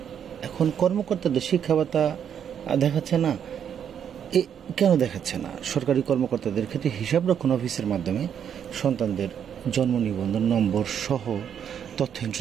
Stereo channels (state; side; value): quieter; left; 8.5 dB